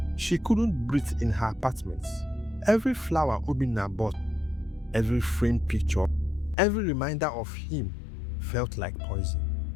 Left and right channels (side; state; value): right; drops out; at 6.6 s